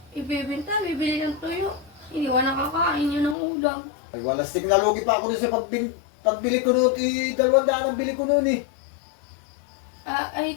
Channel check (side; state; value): right; drops out; at 3.4 s